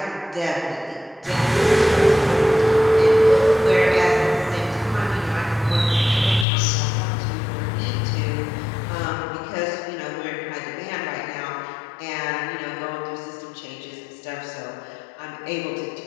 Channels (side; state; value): right; drops out; at 6.5 s